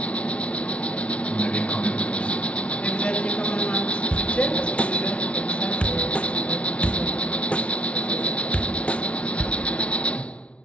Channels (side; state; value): right; late; 0.061 ms